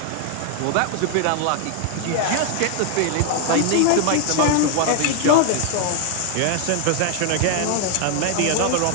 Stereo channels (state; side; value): different; both; correlation 0.00